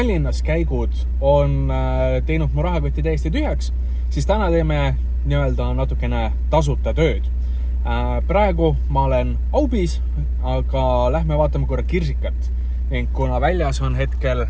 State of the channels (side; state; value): both; identical; correlation 1.00